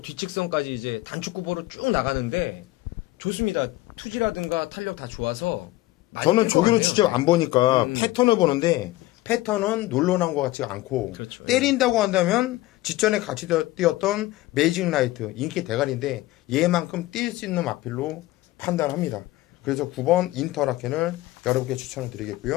뒤측선까지 이제 단축구보로 쭉 나가는데 좋습니다. 투지라든가 탄력 다 좋아서. 저는 조교는 직접 안 보니까 패턴을 보는데, 패턴은 놀러 나온 것 같지가 않고, 그렇죠. 때린다고 한다면 직전에 같이 뛰었던 매직 라이트 인기 대가리인데 얘만큼 뛸 수 있는 마필로 판단합니다. 그래서 9번 인터라켄을 여러분께 추천을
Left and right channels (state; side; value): quieter; right; 17.8 dB